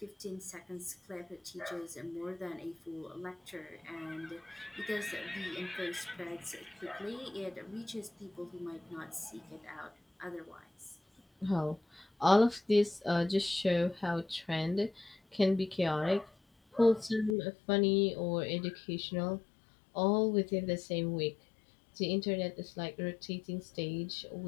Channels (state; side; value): drops out; right; at 17.4 s